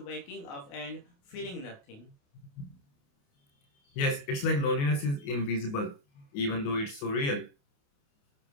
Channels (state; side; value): late; right; 28 ms